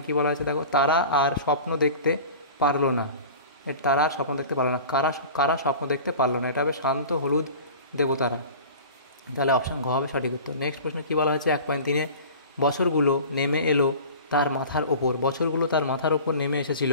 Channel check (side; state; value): both; inverted; correlation -0.39